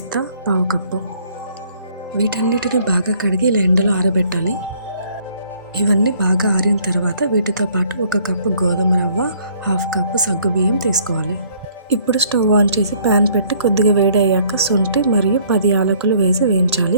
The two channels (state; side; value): inverted; both; correlation -0.61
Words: 1/2 కప్పు. వీటన్నిటిని బాగా కడిగి ఇలా ఎండలో ఆరబెట్టాలి. ఇవన్నీ బాగా ఆరిన తర్వాత వీటితో పాటు 1 కప్పు గోధుమ రవ్వ, 1/2 కప్పు సగ్గుబియ్యం తీసుకోవాలి. ఇప్పుడు స్టవ్ ఆన్ చేసి ప్యాన్ పెట్టి కొద్దిగా వేడి అయ్యాక శొంఠి మరియు 10 యాలకులు వేసి